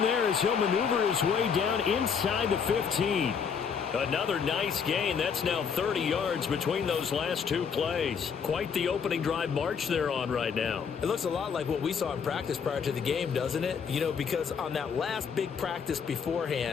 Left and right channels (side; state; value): right; quieter; 6.6 dB